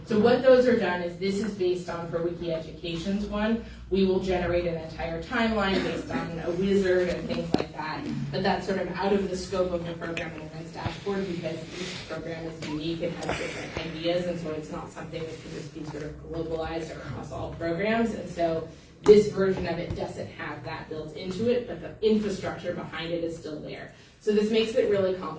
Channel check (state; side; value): identical; both; correlation 1.00